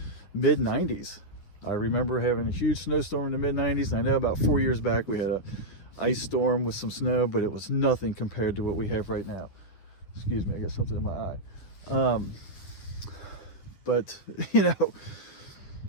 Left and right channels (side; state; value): right; late; 10 ms